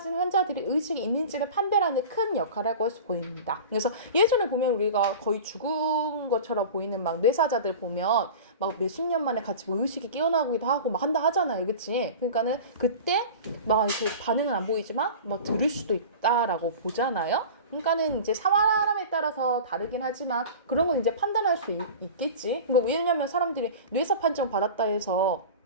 환자들이 의식이 있는지를 판별하는 큰 역할을 하고 보입니다. 그래서 예전에 보면 우리가 거의 죽은 것처럼 보이는 막 뇌사자들 보면 막 몇십 년 만에 같이 뭐 의식이 깨어나기도 하고 막 한다 하잖아요, 그치? 그러니까는 그때 막 이렇게 반응은 안 보이지만 막 들을 수도 있다라고 보잖아요. 그러니까는 이제 사람에 따라서 다르긴 하지만 그런 건 이제 판단할 수 있겠지. 그러니까 왜냐면 사람들이 뇌사 판정 받았다 해서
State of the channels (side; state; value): both; inverted; correlation -0.35